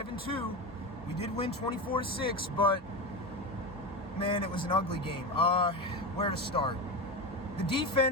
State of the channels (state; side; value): normal; both; correlation 0.20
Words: We did win 24-6, but man, it was an ugly game. Where to start? The